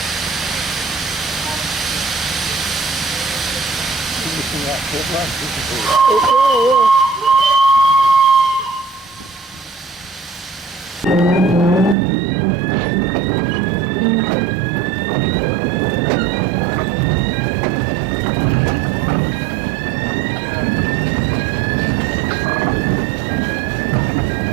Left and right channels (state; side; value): drops out; left; at 12.0 s